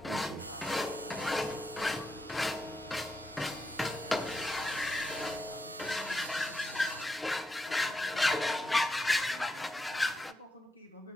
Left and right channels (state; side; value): normal; both; correlation 0.85